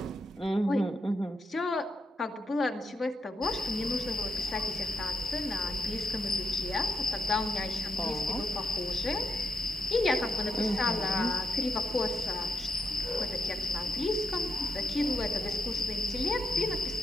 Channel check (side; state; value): both; normal; correlation 0.81